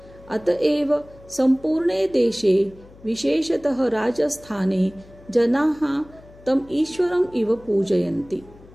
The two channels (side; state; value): left; noise; hum, 23 dB below the sound